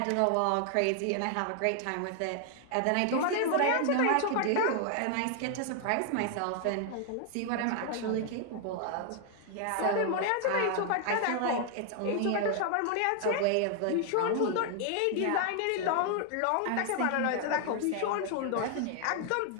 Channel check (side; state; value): both; different; correlation 0.00